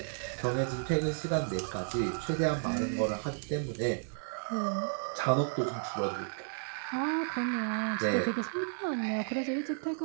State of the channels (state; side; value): silent; left; digital silence